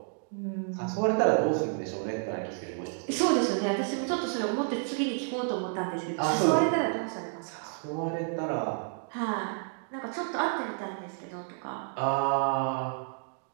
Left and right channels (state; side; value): silent; left; 57 dB below the other